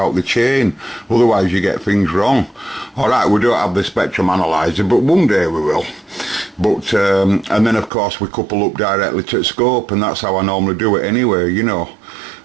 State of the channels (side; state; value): left; drops out; at 7.9 s